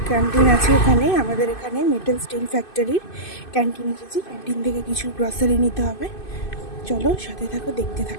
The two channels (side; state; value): right; late; 2.5 ms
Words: ক্যান্টিন আছে এখানে, আমাদের এখানে মেটাল স্টিল ফ্যাক্টরির ক্যান্টিন এসেছি। ক্যান্টিন থেকে কিছু গ্রসারি নিতে হবে, চলো সাথে থাকো, দেখতে